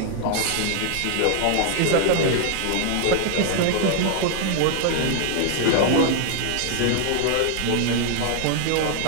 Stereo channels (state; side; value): different; both; correlation 0.00